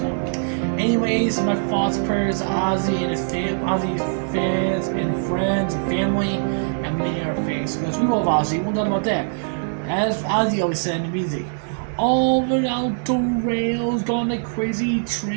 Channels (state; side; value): silent; left; digital silence